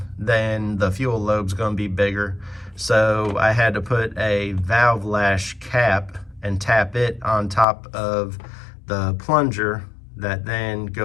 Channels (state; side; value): drops out; right; at 7.7 s